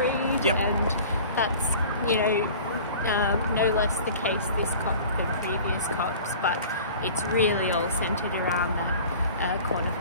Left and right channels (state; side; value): inverted; both; correlation -0.43